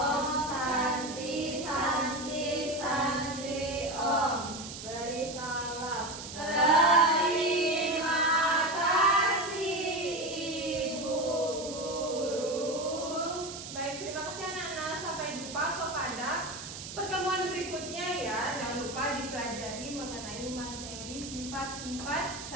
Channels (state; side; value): noise; right; hiss, 10 dB below the sound